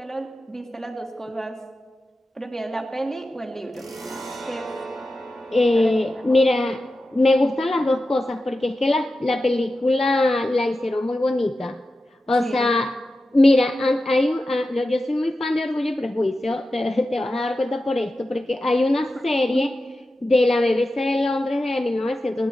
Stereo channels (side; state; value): both; normal; correlation 0.92